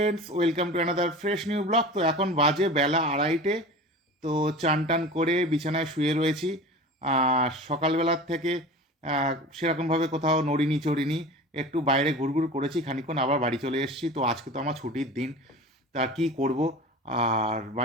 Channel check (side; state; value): both; normal; correlation 0.35